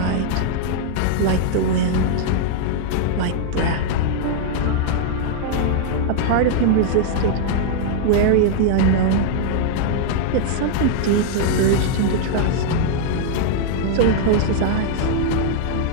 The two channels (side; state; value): both; different; correlation -0.01